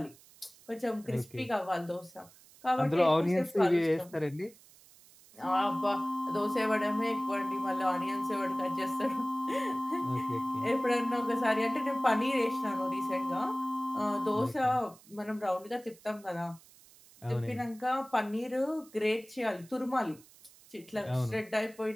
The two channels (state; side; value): noise; right; hiss, 25 dB below the sound